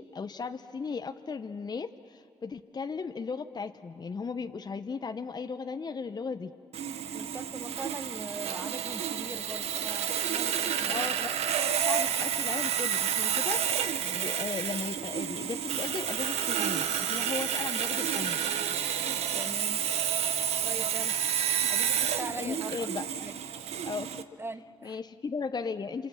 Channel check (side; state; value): left; quieter; 5.1 dB